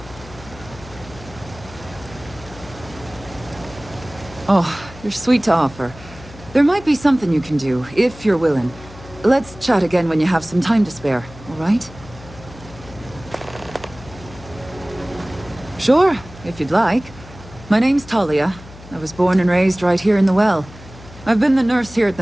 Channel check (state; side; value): noise; left; hum, 18 dB below the sound